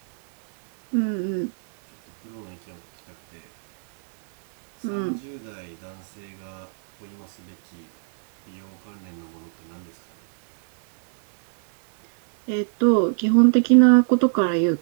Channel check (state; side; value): silent; left; digital silence